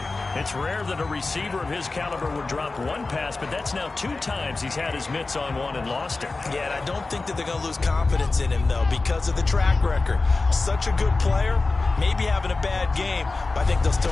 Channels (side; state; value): right; quieter; 3.6 dB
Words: It's rare that a receiver of his caliber would drop one pass, but that's now 2 times he's had his mitts on one and lost it. Yeah, and I don't think that they're going to lose confidence in him, though, because of the track record. Such a good player, maybe having a bad game, but I think they'll